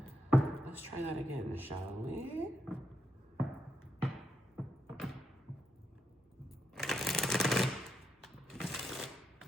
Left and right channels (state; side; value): normal; both; correlation 0.83